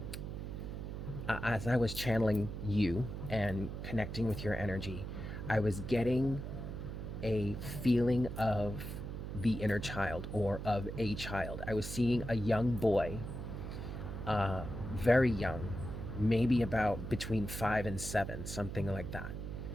channeling you and connecting with your energy, I was getting a feeling of the inner child, or of a child. I was seeing a young boy, very young, maybe about between 5 and 7, something like that.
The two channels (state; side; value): noise; right; hum, 6 dB below the sound